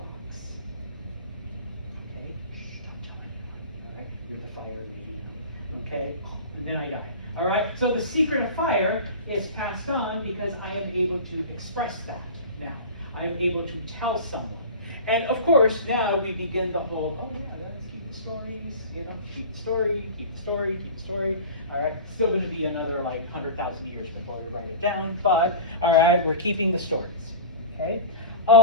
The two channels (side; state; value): both; inverted; correlation -0.32